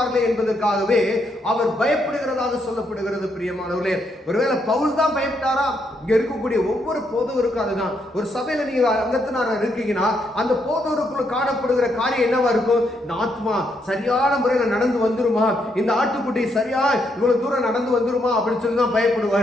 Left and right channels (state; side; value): normal; both; correlation 0.77